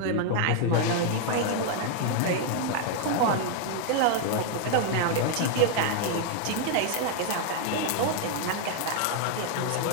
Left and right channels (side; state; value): both; different; correlation 0.00